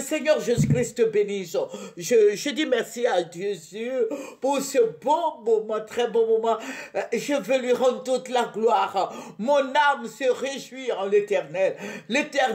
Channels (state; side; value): identical; both; correlation 1.00